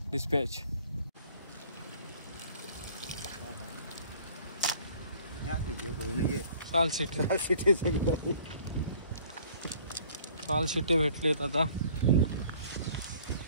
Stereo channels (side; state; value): both; inverted; correlation -0.53